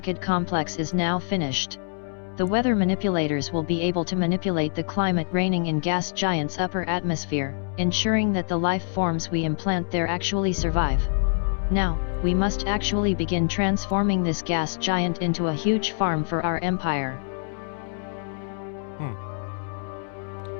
complex is now finished. The weather manipulators will be able to manipulate the climate reigning in gas giant's upper atmosphere, ensuring that the life forms we implant there actually survive. Now, we must actually begin transforming this gas giant into a huge farm for our empire.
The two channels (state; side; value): silent; right; 61 dB below the other